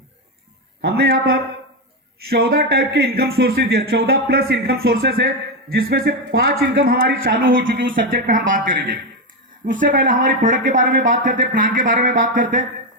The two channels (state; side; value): normal; both; correlation 0.09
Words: हमने यहां पर 14 टाइप के इनकम सोर्सेज दिया, 14 प्लस इनकम सोर्सेज है, जिसमें से 5 इनकम हमारी चालू हो चुकी है। उस सब्जेक्ट पे हम बात करेंगे। उससे पहले हमारी प्रोडक्ट के बारे में बात करते हैं, प्लान के बारे में बात करते हैं।